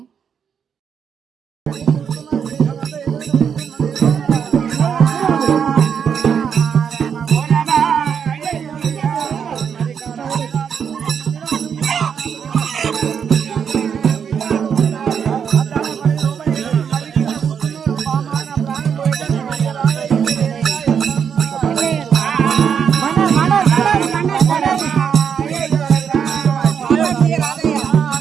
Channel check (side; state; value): left; quieter; 7.3 dB